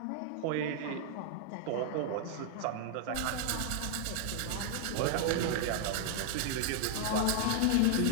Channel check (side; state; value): both; different; correlation 0.00